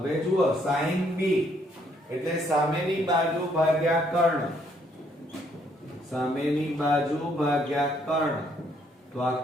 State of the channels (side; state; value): both; normal; correlation 0.68